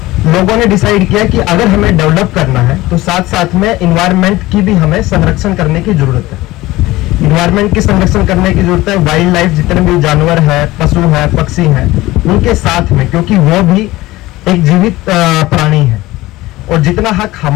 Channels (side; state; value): right; quieter; 18.5 dB